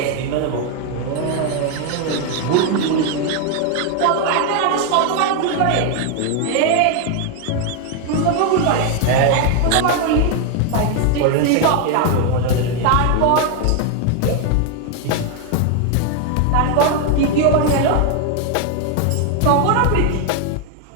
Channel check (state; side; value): different; both; correlation 0.01